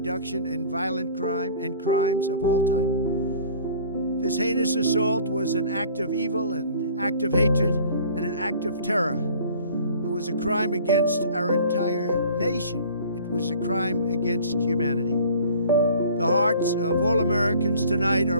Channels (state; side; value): inverted; both; correlation -0.48